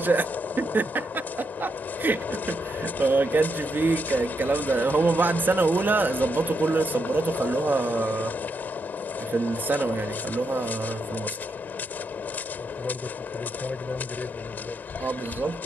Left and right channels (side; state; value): both; normal; correlation 0.81